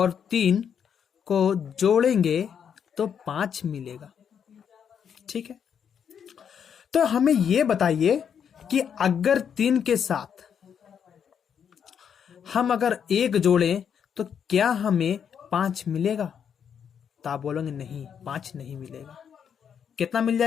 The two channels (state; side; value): quieter; right; 7.8 dB